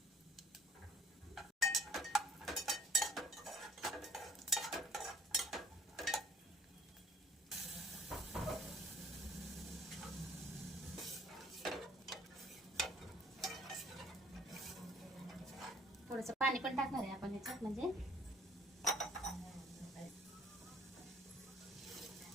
थोडंसं पाणी पण टाकणार आहे आपण ह्याच्यात, म्हणजे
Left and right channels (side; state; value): both; normal; correlation 0.58